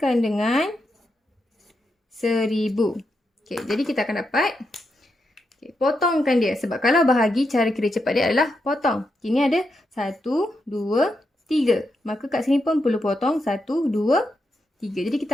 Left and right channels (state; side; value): normal; both; correlation 0.84